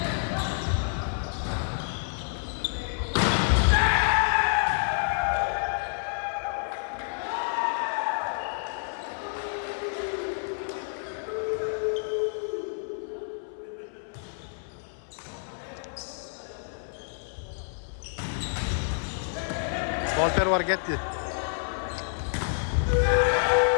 Alper var gitti.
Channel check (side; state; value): right; silent; 58 dB below the other